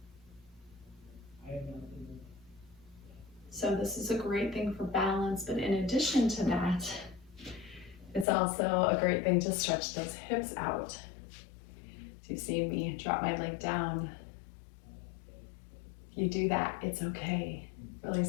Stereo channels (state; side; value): drops out; right; at 8.2 s